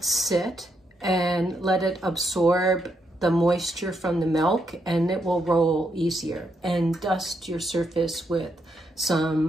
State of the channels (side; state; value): both; normal; correlation 0.79